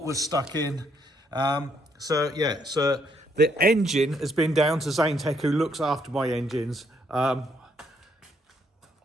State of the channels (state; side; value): normal; both; correlation 0.72